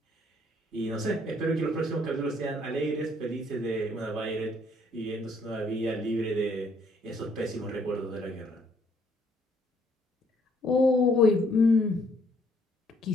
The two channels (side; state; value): both; normal; correlation 0.66